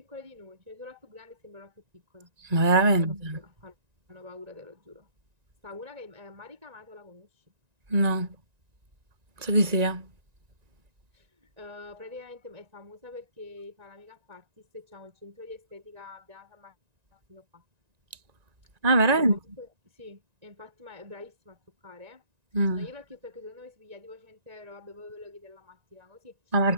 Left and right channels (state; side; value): late; left; 1.9 ms